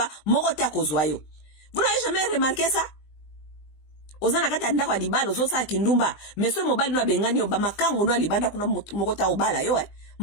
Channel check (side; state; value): right; late; 20 ms